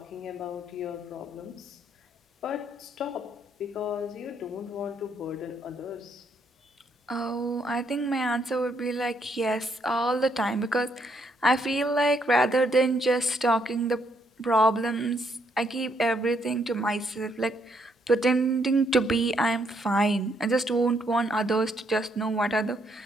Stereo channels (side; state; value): both; normal; correlation 0.73